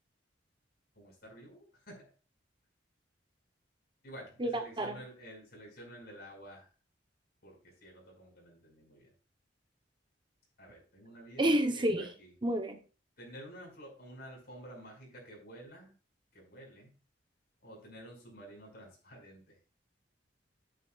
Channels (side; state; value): both; normal; correlation 0.62